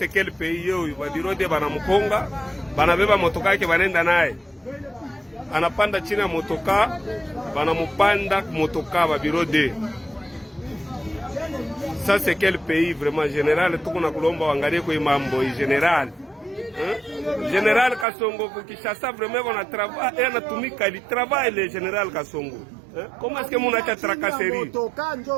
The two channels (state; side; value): drops out; left; at 18.1 s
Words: quel pays yoyu ba bureau de bana mukonga, bana beba motoka yake banenda naye. Anapanda chini ya motoka, bana mupanda motoka ba bureau de. Ça c'est quel pays vraiment général? Tuko na kulomba wangalie kwa mambo hii général. Général Kasongo Kinshasa vraiment on a travaillé, on a tumika il travaille le général Kasongo. Comment est-ce que mon acha tracasserie?